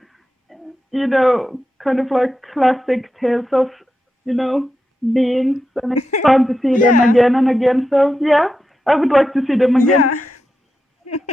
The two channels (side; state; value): both; normal; correlation 0.88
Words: kind of like classic tales of beings, and it's fun to see them again and again. So yeah, I would like to see them again.